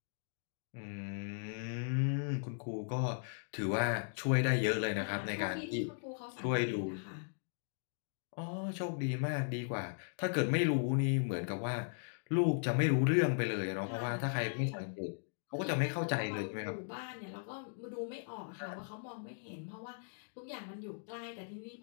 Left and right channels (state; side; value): silent; right; digital silence